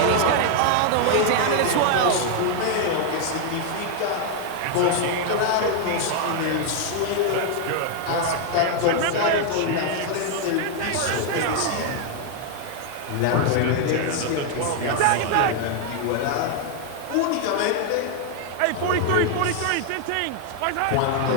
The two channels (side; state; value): both; different; correlation 0.00